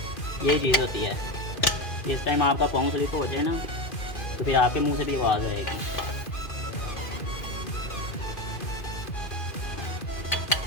ये चीज़ होती है। इस टाइम आपका पाँव स्लिप हो जाए ना, तो फिर आपके मुंह से भी आवाज़ आएगी।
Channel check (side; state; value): right; late; 2.5 ms